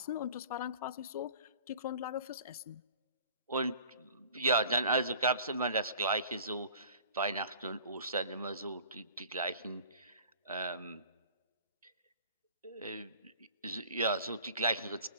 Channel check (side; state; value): both; inverted; correlation -0.45